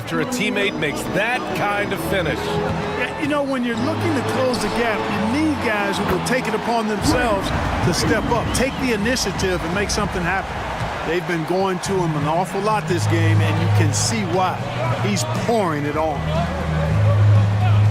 a teammate makes that kind of finish. Yeah, you know, when you're looking to close the gap, you need guys who will take it upon themselves to step up, take the initiative, and make something happen. They've been going to him an awful lot this game, and you can see why. He's pouring it on.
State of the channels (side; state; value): both; identical; correlation 1.00